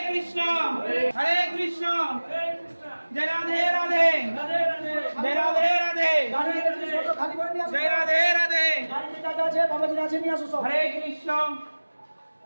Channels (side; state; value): both; inverted; correlation -1.00